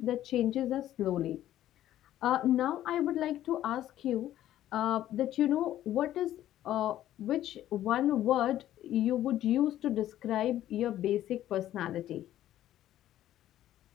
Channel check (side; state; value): right; quieter; 12.8 dB